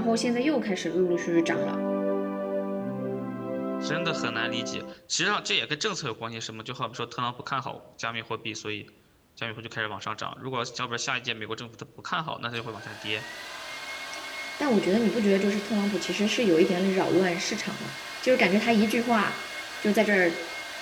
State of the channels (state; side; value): identical; both; correlation 1.00